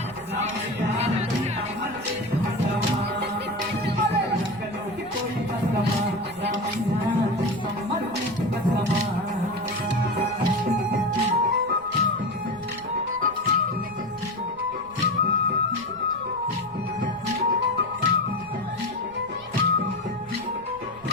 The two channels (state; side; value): noise; right; rumble, 23 dB below the sound